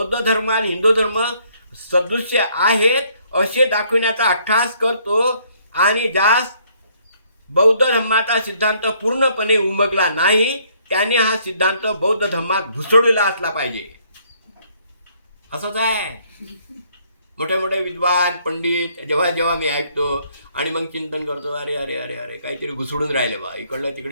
धर्म आणि हिंदू धर्म सदृश्य आहेत असे दाखविण्याचा अट्टहास करतो आणि ज्यास बौद्ध धर्माचा सिद्धांत पूर्णपणे उमगला नाही त्याने हा सिद्धांत बौद्ध धर्मात घुसडलेला असला पाहिजे. असंच आहे. मोठे मोठे विद्वान पंडित जेव्हा मी ऐकतो आणि मग चिंतन करतो, अरे अरे अरे अरे काहीतरी घुसडून राहिले बा, इकडलं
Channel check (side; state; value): both; inverted; correlation -0.66